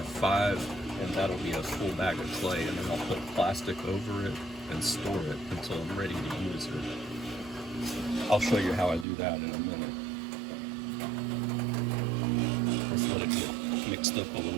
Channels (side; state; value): left; drops out; at 9.1 s